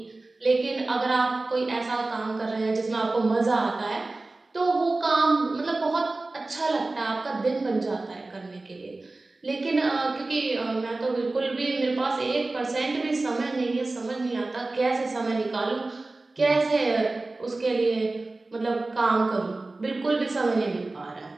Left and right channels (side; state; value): left; quieter; 3.2 dB